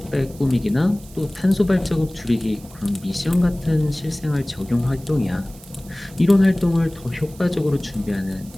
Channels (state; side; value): noise; right; hiss, 22 dB below the sound